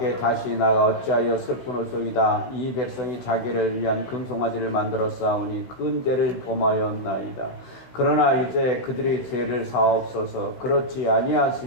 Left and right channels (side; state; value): right; late; 16 ms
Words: 다시 나가 어찌하여 슬프노소이다. 이 백성이 자기를 위한 금송아지를 만들어 싸우니 큰 죄를 범하였나이다. 그러나 이제 그들의 죄를 사옵소서. 그렇지